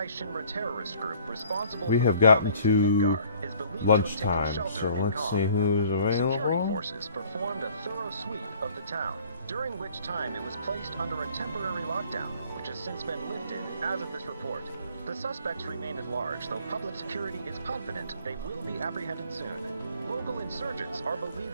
We have gotten to lunchtime, so let's see who's available. Forces performed a thorough sweep of the town, during which time it was placed under a temporary lockdown, which has since been lifted as of this report. The suspects remain at large, though public security is confident they will be apprehended soon. Local insurgents are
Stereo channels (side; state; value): both; inverted; correlation -0.55